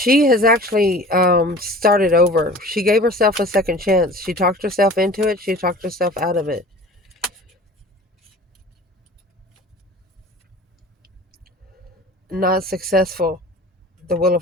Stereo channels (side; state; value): both; normal; correlation 0.43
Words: has actually started over. She gave herself a second chance. She talked herself into it. She talked herself out of it. not successful. The Wheel of